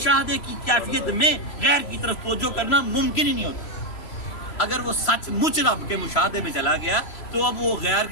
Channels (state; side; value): late; right; 3.0 ms